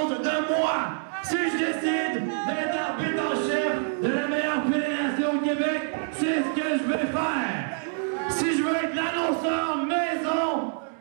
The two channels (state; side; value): silent; left; 61 dB below the other